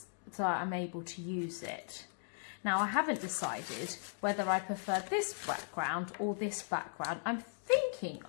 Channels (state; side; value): silent; right; digital silence